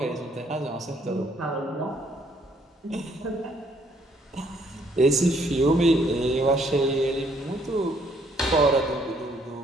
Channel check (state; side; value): normal; both; correlation 0.66